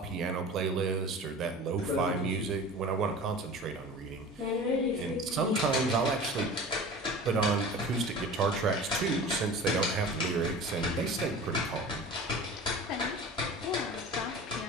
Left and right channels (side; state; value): both; normal; correlation 0.38